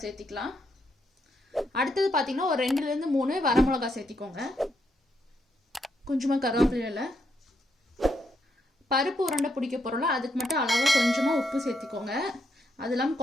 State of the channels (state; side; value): normal; both; correlation 0.78